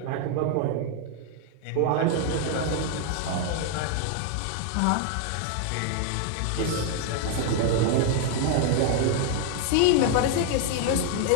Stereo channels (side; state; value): both; different; correlation 0.00